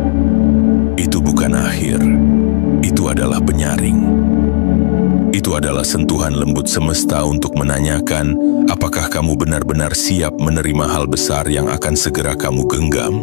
itu bukan akhir. Itu adalah penyaring. Itu adalah sentuhan lembut semesta untuk menanyakan, apakah kamu benar-benar siap menerima hal besar yang akan segera kamu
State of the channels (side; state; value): right; silent; 66 dB below the other